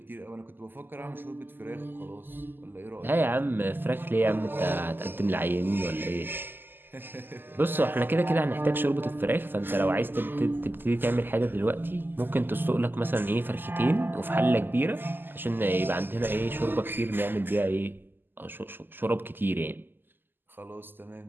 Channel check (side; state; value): left; late; 0.094 ms